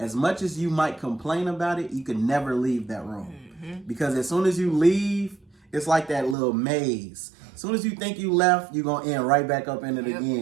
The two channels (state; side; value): drops out; left; at 6.4 s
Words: much as you might complain about it, you can never leave that room. Because as soon as you leave, it's like that little maze. As soon as you think you left, you're going to end right back up in it